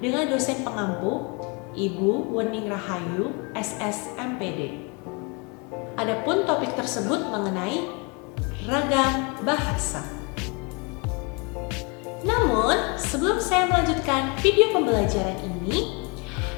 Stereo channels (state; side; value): quieter; right; 31.6 dB